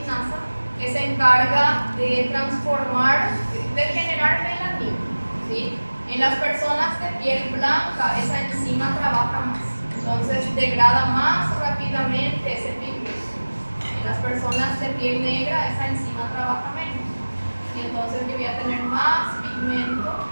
que se encarga de transformar, de generar melanina. ¿Sí? En las personas de piel blanca, esa enzima trabaja más, entonces degrada más rápidamente ese pigmento. En las personas de piel negra, esa enzima trabaja menos, y entonces yo voy a tener más pigmento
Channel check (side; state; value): both; inverted; correlation -1.00